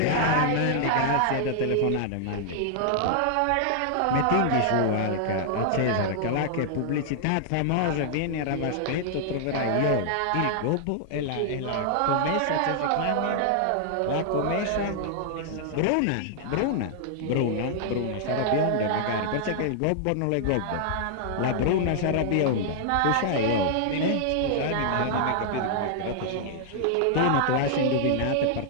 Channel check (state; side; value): different; both; correlation -0.01